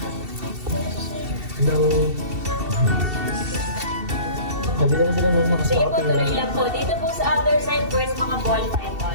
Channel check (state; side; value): late; left; 2.7 ms